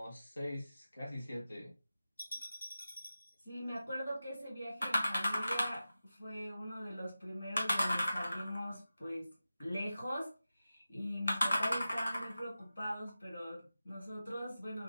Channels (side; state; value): both; inverted; correlation -0.94